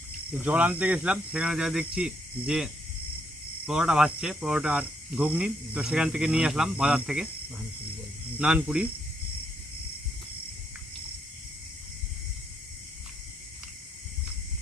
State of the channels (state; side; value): normal; both; correlation 0.75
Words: জল আনতে গেছিলাম, সেখানে যা দেখছি যে পরোটা ভাজছে, পরোটা আর ঘুগনি, তো সেখান থেকে নিয়ে আসলাম বাজার থেকে নানপুরি।